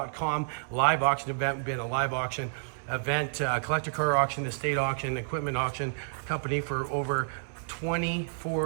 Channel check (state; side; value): silent; left; 58 dB below the other